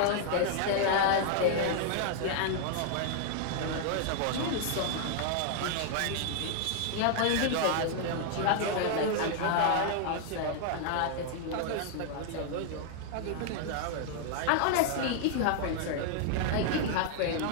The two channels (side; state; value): both; different; correlation 0.00